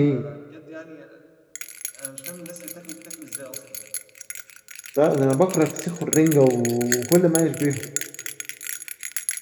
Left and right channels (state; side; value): identical; both; correlation 1.00